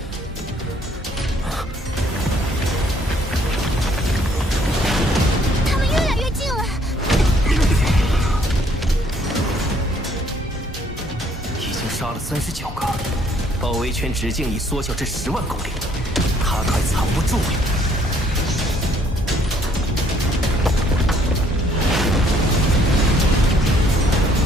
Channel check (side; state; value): both; normal; correlation 0.64